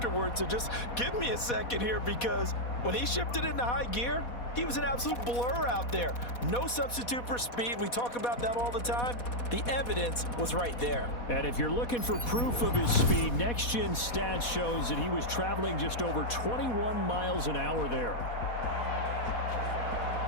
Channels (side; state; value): right; late; 4.1 ms